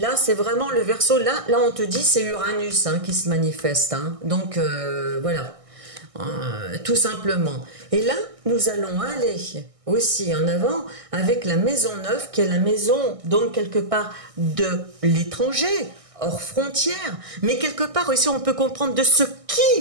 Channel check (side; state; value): left; late; 1.6 ms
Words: c'est vraiment le Verseau. Là, on te dit, c'est Uranus hein, qui se manifeste. Hein. Donc, voilà. Tout simplement. Et là, nous allons aller aussi en avant avec la maison 9, qui est la maison, donc, quelque part, de l'étranger, hors frontières. Mais quelque part aussi, on peut comprendre de ce qui